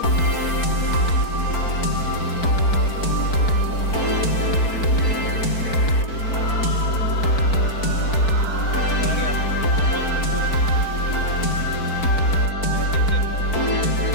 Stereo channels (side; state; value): right; late; 4.5 ms